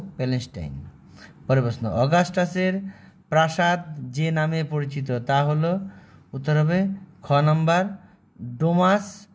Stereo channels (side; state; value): both; identical; correlation 1.00